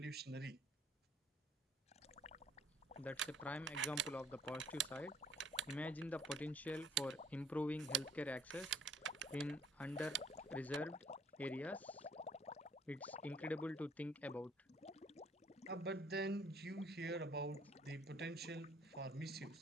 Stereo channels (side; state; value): both; normal; correlation 0.61